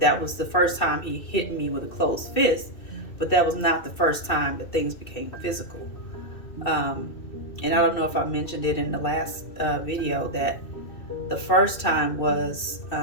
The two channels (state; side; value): late; right; 2.6 ms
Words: was the first time he hit me with a closed fist, but that was not the first time that things became physical. And I don't know if I mentioned it in the last video, that the first time was